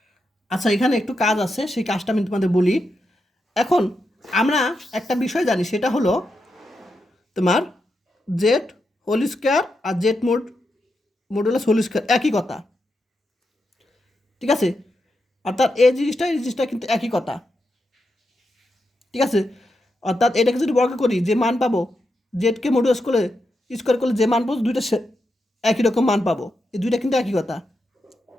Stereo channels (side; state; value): both; normal; correlation 0.86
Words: আচ্ছা, এখানে একটু কাজ আছে, সেই কাজটা আমি তোমাদের বলি। এখন আমরা একটা বিষয় জানি, সেটা হলো তোমার জেড হোল স্কোয়ার আর জেড মডুলাস হোল স্কোয়ার একই কথা, ঠিক আছে? অর্থাৎ এই জিনিসটা কিন্তু একই কথা, ঠিক আছে? অর্থাৎ এটাকে যদি বর্গ করি, যে মান পাবো জেডকে মডুলাস করে স্কোয়ার করলে যে মান পাবো দুইটা একই রকম মান পাবো, এই দুইটা কিন্তু একই কথা,